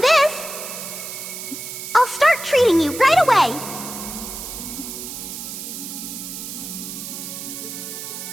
I'll start treating you right away.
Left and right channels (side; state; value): right; noise; hiss, 8 dB below the sound